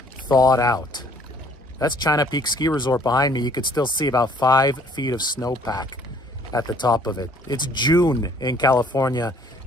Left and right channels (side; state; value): both; normal; correlation 0.59